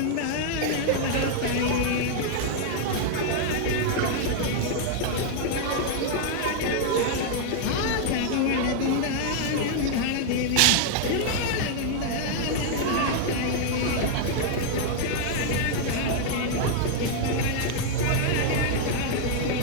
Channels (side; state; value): both; different; correlation 0.00